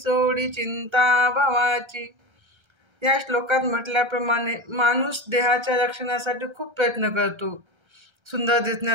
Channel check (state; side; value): late; left; 1.3 ms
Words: चिंता भवाची. या श्लोकात म्हटल्याप्रमाणे माणूस देहाच्या रक्षणासाठी खूप प्रयत्न करतो. सुंदर